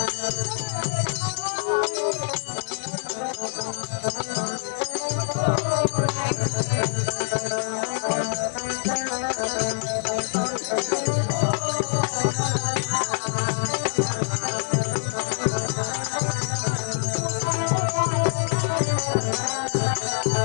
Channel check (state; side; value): silent; right; digital silence